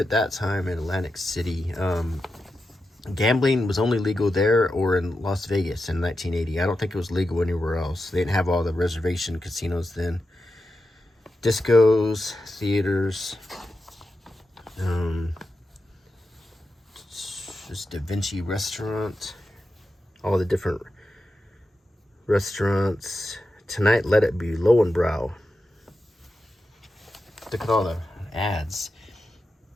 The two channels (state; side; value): normal; both; correlation 0.89